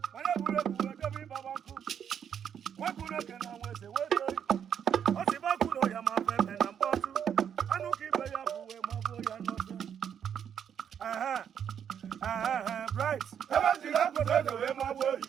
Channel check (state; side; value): quieter; left; 8.4 dB